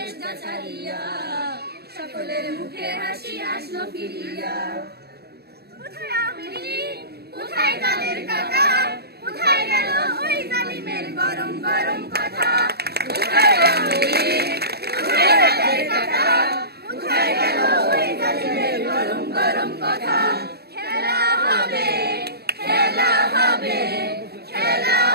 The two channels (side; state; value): left; late; 0.47 ms